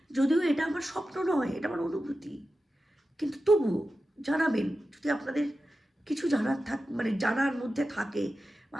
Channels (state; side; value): normal; both; correlation 0.92